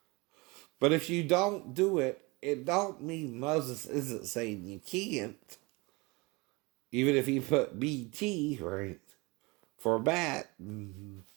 But if you don't do it, it don't mean Moses isn't saying you can't. Even if he put BT, right, for bat, and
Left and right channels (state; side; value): quieter; left; 25.6 dB